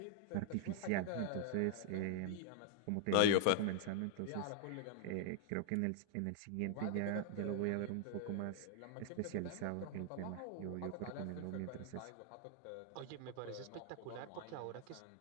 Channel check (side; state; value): both; different; correlation 0.00